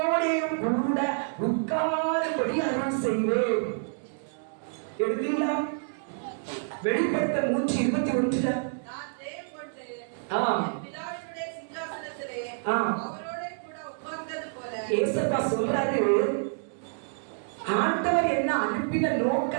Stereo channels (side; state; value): left; silent; digital silence